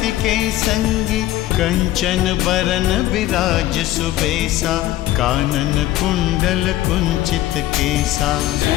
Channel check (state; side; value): quieter; right; 14.7 dB